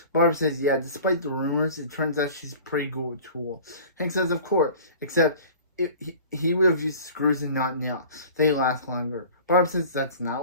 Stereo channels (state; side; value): inverted; both; correlation -0.43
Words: Barb says, yeah, despite the rumors, it turns out she's pretty good with tools. Hank says, of course, except he would have used screws and not nails. They last longer. Barb says, that's